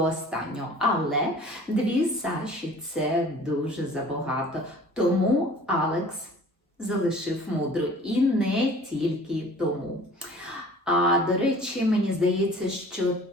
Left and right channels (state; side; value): normal; both; correlation 0.47